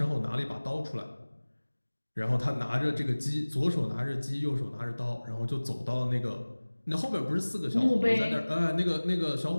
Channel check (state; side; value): inverted; both; correlation -1.00